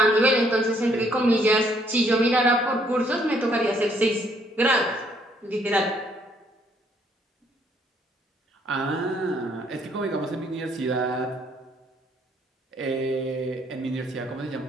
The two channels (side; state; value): both; normal; correlation 0.67